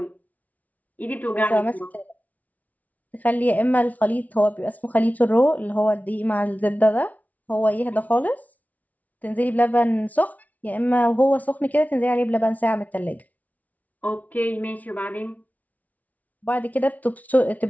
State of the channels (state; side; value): late; right; 0.073 ms